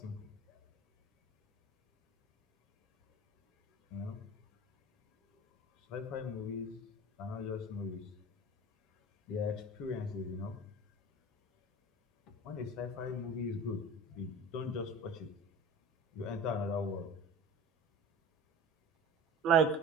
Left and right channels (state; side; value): normal; both; correlation 0.38